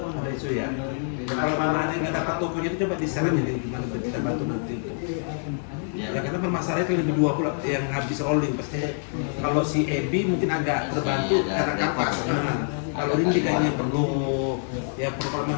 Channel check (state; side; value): silent; right; digital silence